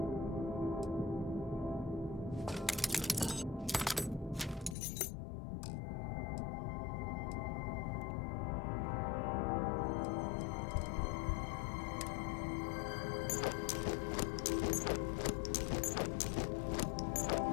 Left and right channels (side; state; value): right; drops out; at 4.8 s